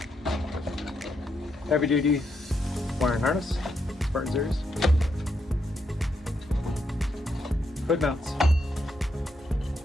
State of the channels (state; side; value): normal; both; correlation 0.79